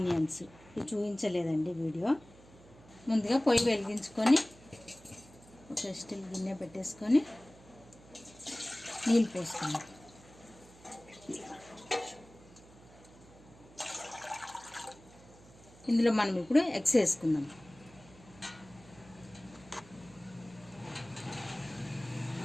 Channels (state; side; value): noise; right; hum, 22 dB below the sound